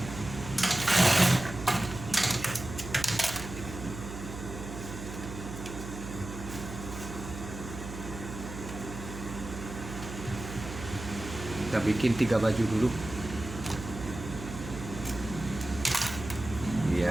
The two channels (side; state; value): right; noise; hum, 9 dB below the sound